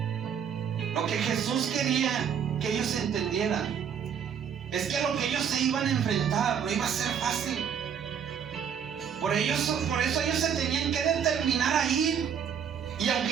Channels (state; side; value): quieter; left; 7.9 dB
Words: Lo que Jesús quería que ellos entendieran es que lo que ellos se iban a enfrentar no iba a ser fácil. Por eso ellos se tenían que determinar a ir. Y